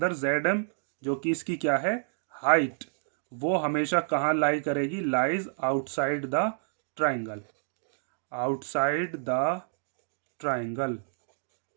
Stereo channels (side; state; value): left; silent; digital silence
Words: जेड एम जो कि इसकी क्या है हाइट, वो हमेशा कहां लाई करेगी, lies outside the triangle, outside the triangle,